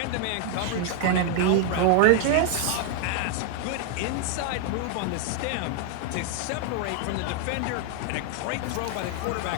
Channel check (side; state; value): both; different; correlation 0.00